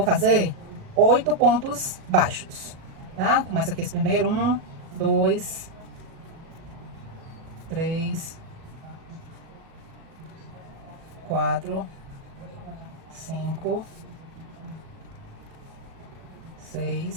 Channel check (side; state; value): left; late; 37 ms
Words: fazer 8 pontos baixos, tá? Começa aqui esse primeiro, 1, 2, 3, 4, 5,